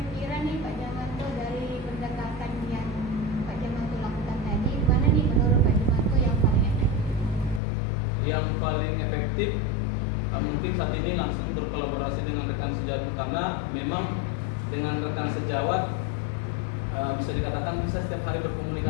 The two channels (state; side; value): drops out; right; at 7.6 s